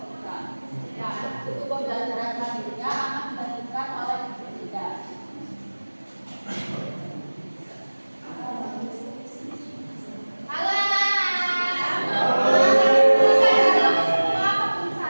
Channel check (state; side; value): inverted; both; correlation -1.00